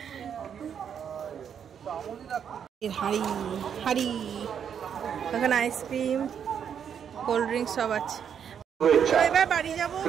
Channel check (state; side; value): quieter; left; 8.0 dB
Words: হাড়ি হাড়ি ওখানে আইসক্রিম, কোল্ড ড্রিঙ্কস সব আছে। শুভেচ্ছা, এবার বাড়ি যাবো,